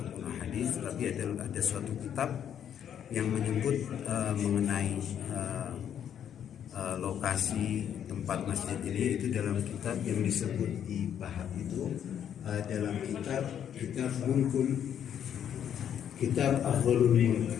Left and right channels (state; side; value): quieter; right; 9.3 dB